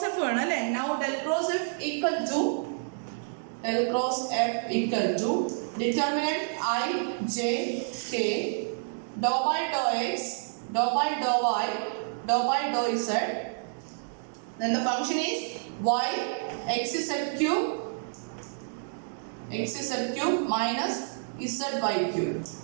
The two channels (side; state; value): left; silent; digital silence